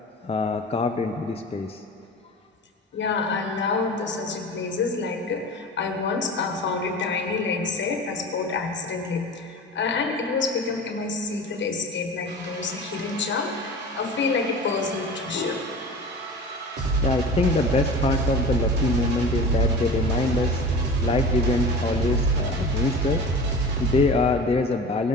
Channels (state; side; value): normal; both; correlation 0.35